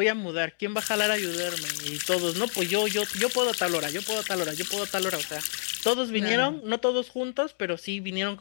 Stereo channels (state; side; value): silent; right; 59 dB below the other